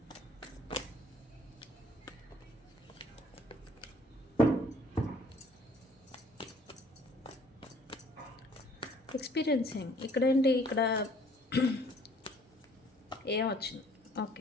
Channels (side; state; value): both; normal; correlation 0.58